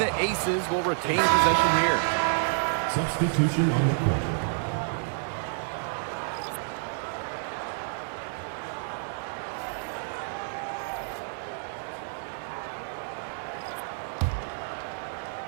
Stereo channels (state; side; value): silent; left; digital silence